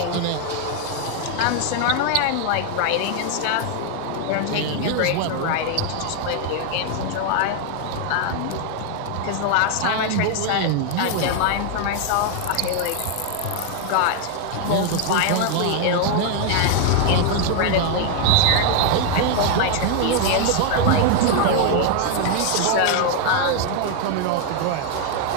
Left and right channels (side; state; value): both; different; correlation 0.01